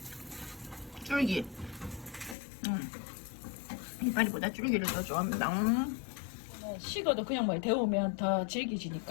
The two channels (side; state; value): right; drops out; at 2.4 s